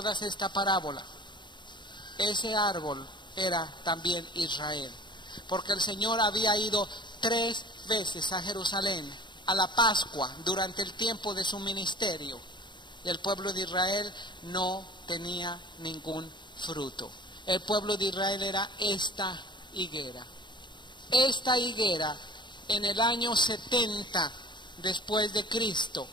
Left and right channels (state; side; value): late; right; 0.22 ms